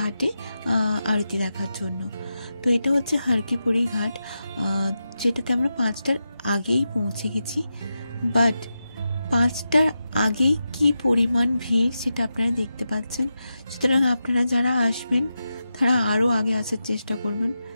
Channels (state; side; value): inverted; both; correlation -0.89